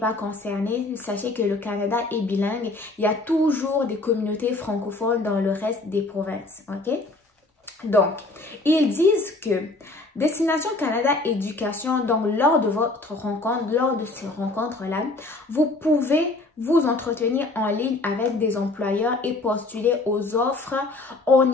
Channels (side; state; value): right; quieter; 3.0 dB